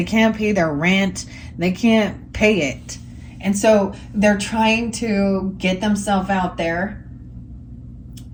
can't pay their rent. They can't pay it. And so they're trying to get themselves out there.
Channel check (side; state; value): both; identical; correlation 1.00